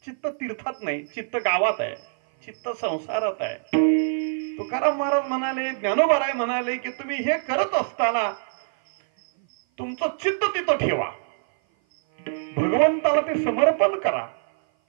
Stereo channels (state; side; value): silent; left; 56 dB below the other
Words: तीर्थात नाही, चित्त गावात आहे, चित्त संसारात आहे. तुकाराम महाराज म्हणाले, ज्ञानोबाराय म्हणाले की तुम्ही हे करत असताना तुमचं चित्त तिथं ठेवा, भगवंताला ते समर्पण करा.